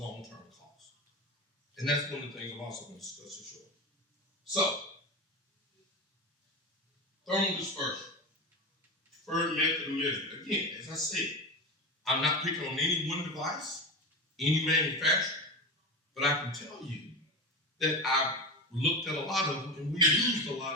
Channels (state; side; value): normal; both; correlation 0.23